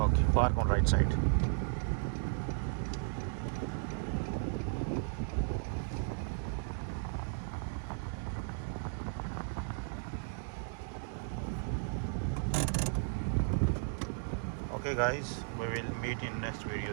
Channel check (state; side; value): silent; left; digital silence